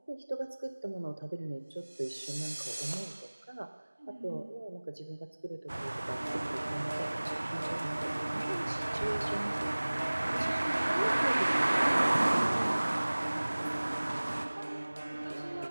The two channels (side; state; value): both; inverted; correlation -1.00